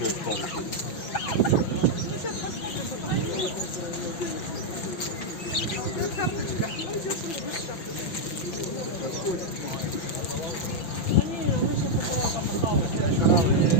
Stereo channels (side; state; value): right; late; 5.9 ms